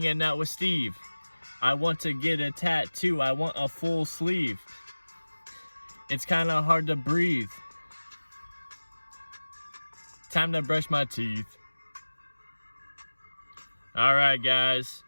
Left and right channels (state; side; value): inverted; both; correlation -1.00